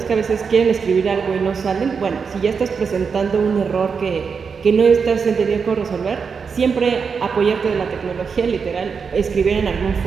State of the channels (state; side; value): quieter; left; 5.8 dB